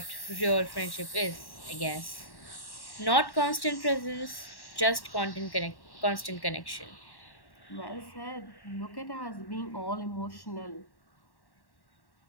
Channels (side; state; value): right; late; 1.1 ms